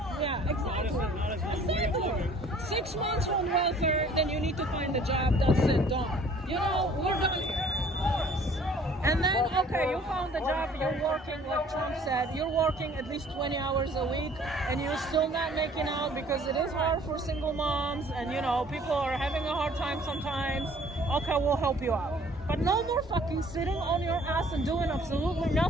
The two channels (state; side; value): normal; both; correlation 0.55